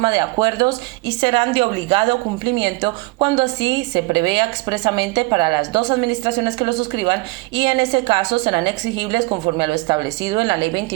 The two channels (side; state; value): left; quieter; 24.5 dB